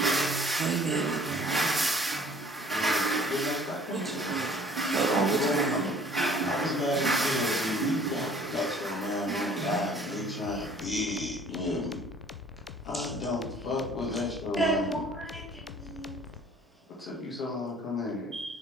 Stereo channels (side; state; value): both; normal; correlation 0.53